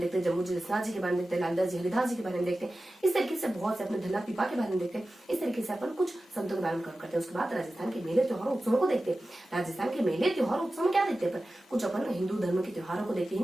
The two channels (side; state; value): both; normal; correlation 0.95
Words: देखते हैं, जम्मू जी दसनाथ जी के बारे में देखते हैं, लालदास जी, हरिदास जी के बारे में देखते हैं। इस तरीके से बहुत से अपने धल्ला पीपा के बारे में देखते हैं। इस तरीके से अपन कुछ संतों के बारे में कवर करते हैं। उसके बाद राजस्थान के मेले त्योहार उत्सवों को देखते हैं। राजस्थान के मेले त्योहार उत्सव में क्या देखते हैं? कुछ अपन हिंदू धर्म के त्योहारों को देखते हैं।